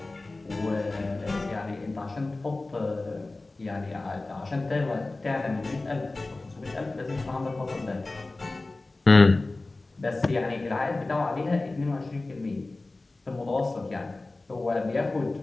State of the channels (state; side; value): quieter; right; 3.2 dB